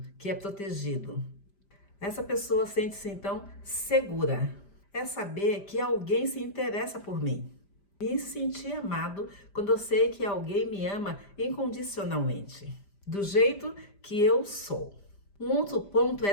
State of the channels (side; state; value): right; late; 5.0 ms